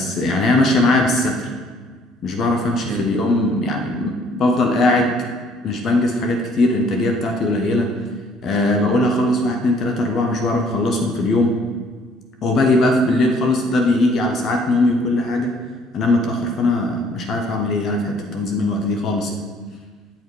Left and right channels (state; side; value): normal; both; correlation 0.60